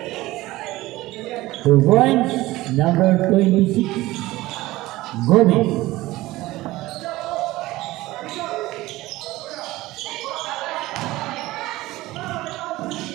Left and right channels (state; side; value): quieter; left; 18.2 dB